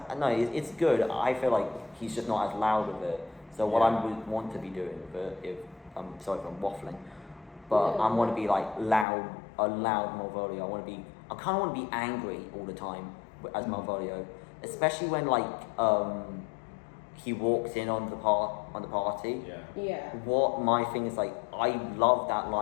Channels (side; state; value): right; drops out; at 9.1 s